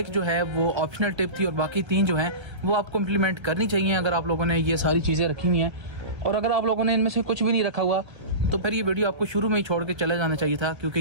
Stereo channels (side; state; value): left; late; 1.3 ms